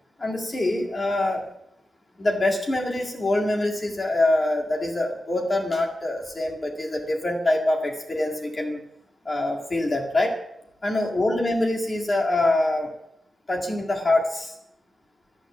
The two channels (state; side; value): normal; both; correlation 0.92